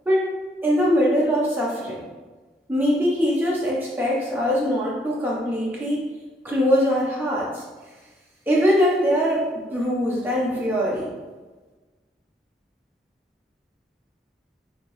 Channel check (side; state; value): both; normal; correlation 0.68